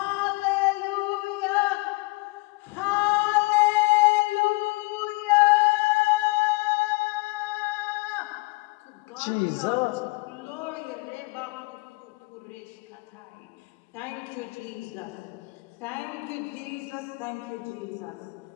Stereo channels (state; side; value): quieter; right; 25.6 dB